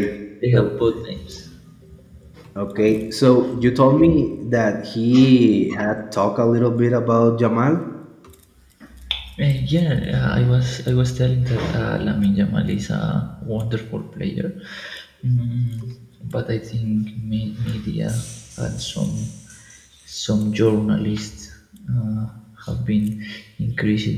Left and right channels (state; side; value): identical; both; correlation 1.00